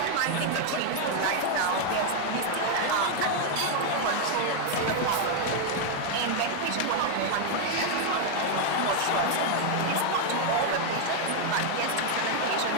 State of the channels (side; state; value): both; different; correlation 0.00